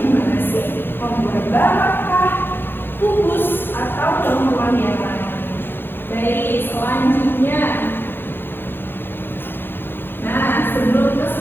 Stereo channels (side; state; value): right; late; 0.10 ms